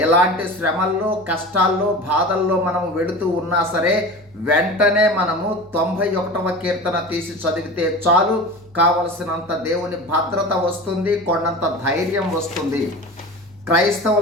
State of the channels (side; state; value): right; noise; hum, 28 dB below the sound